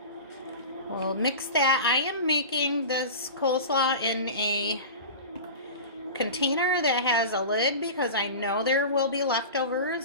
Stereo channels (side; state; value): both; inverted; correlation -0.31